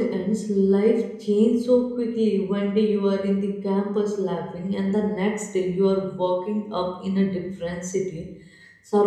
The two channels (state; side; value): identical; both; correlation 1.00